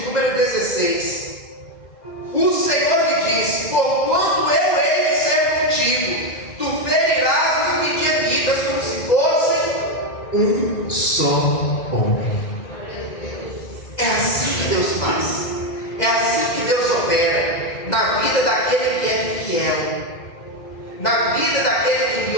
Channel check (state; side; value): late; right; 2.3 ms